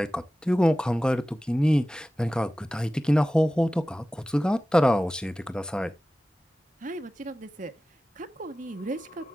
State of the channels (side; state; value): both; normal; correlation 0.96